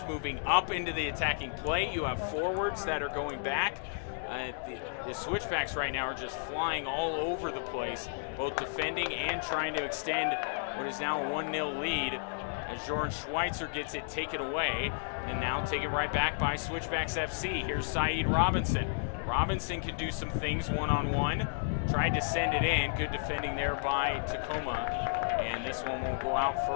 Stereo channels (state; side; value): silent; right; digital silence